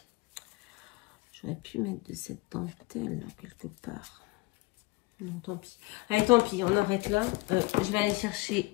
J'aurais pu mettre de cette dentelle là, quelque part. Non, tant pis. Allez, tant pis, on arrête là. Je vais aller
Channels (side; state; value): right; quieter; 24.0 dB